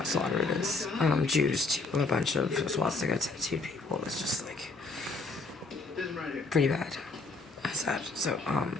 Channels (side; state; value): right; quieter; 3.7 dB